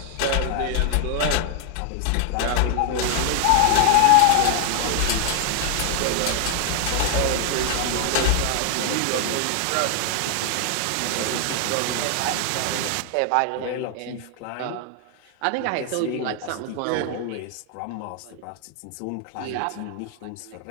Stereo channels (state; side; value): different; both; correlation 0.00